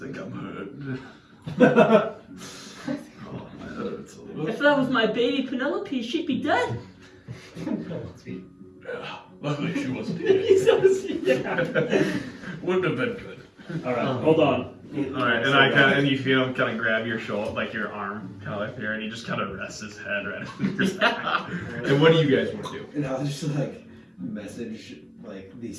I'm hurt. Oh, my head hurts a little. If that was my baby Penelope, she'd be dead. Yeah, luckily she wasn't here. Yeah. Wouldn't have been good. All right, hold on. All right, and you feel him kind of grab your shoulder, like your arm, kind of like here, and he just kind of rests his head right on your back. And what do you guys want to do? And I'll just like message like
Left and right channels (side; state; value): both; identical; correlation 1.00